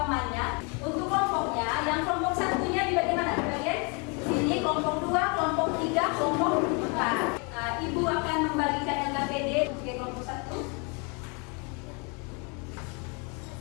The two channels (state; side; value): quieter; right; 33.3 dB